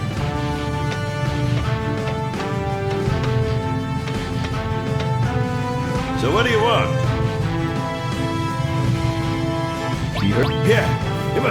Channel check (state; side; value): identical; both; correlation 1.00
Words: So what do you want? Yeah, it